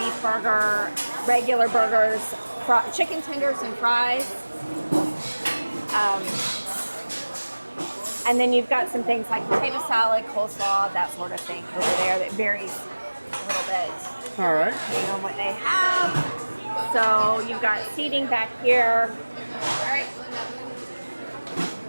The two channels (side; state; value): both; inverted; correlation -1.00